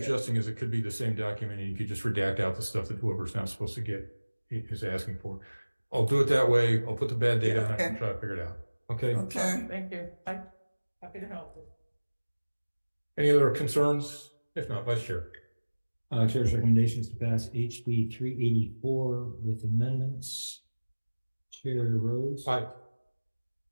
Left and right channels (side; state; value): both; inverted; correlation -1.00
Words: is it could be the same document, and you could just redact out the stuff that whoever's not supposed to get is asking for. I'll do it that way. I'll put the bad date on it and try to figure it out. Okay. Okay. Thank you. I'm happy to help. Any other concerns? If not, Vice Chair. Chair's recommendations to pass HB 384 with amendments. Chair Rhodes. Aye.